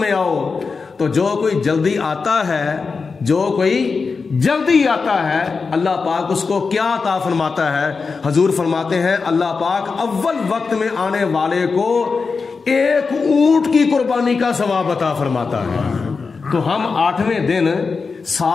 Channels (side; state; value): right; quieter; 4.7 dB